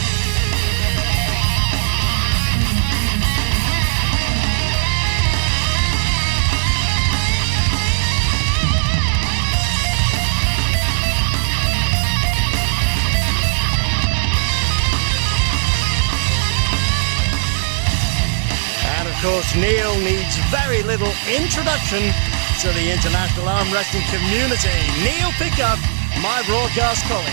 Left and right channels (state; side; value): silent; left; digital silence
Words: Of course, Neil needs very little introduction to the international arm wrestling community. Neil Pickup, my broadcast